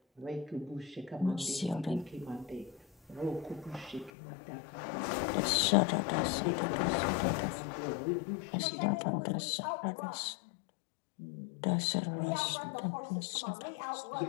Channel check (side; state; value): right; drops out; at 4.1 s